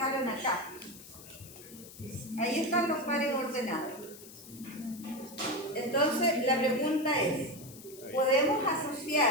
acá. Ahí están los pares ordenados. Entonces, la pregunta es, ¿podemos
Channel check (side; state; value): left; noise; hiss, 17 dB below the sound